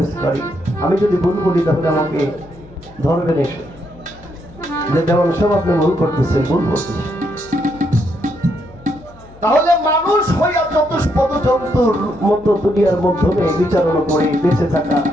কারি। আমি যদি ভুল বলি তাহলে আমাকে ধরবেন এসে, যে যেমন সব আপনি ভুল করতেছেন, ভুল করতেছেন। তাহলে মানুষ হইয়া চতুষ্পদ জন্তুর মতো দুনিয়ার মাধ্যমে বিচারণা করে বেঁচে থাকা,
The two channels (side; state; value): left; noise; hum, 23 dB below the sound